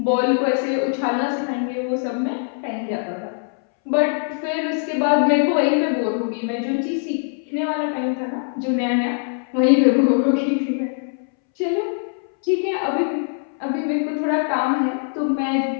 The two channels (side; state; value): right; silent; 64 dB below the other